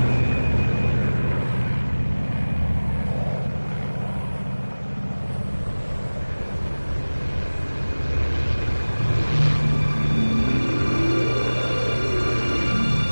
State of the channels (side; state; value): both; inverted; correlation -1.00